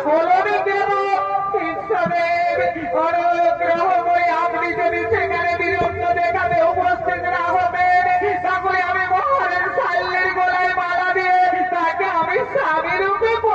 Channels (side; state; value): both; identical; correlation 1.00